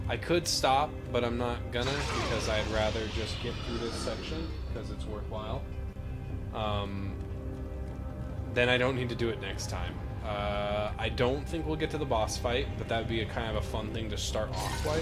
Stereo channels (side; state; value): both; identical; correlation 1.00